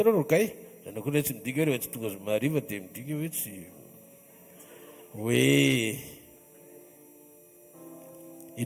rokay zanao koa tsy midika hoe tsy tonga zomariva dia midika hoe tsy hoe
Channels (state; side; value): identical; both; correlation 1.00